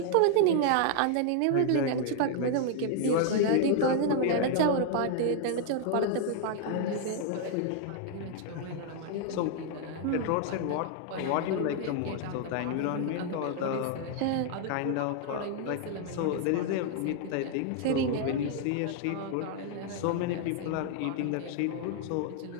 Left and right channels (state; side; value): different; both; correlation 0.00